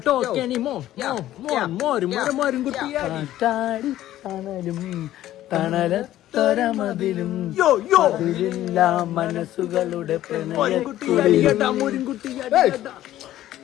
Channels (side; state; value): right; quieter; 13.6 dB